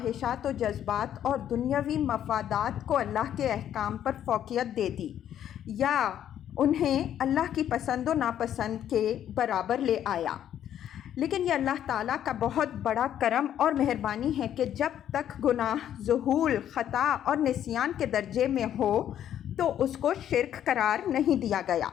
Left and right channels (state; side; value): quieter; right; 10.5 dB